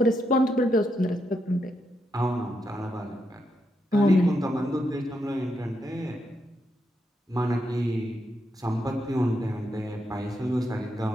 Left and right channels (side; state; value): both; normal; correlation 0.82